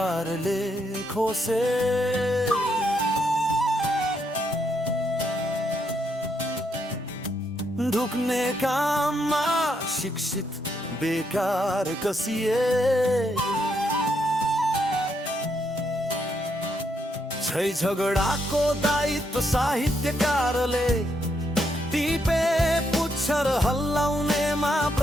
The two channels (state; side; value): normal; both; correlation 0.77